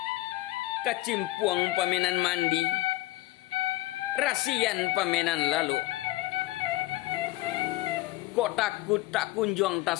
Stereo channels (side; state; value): right; quieter; 17.9 dB